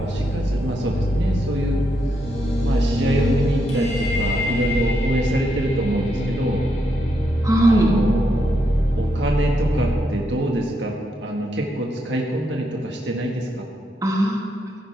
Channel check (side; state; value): both; normal; correlation 0.80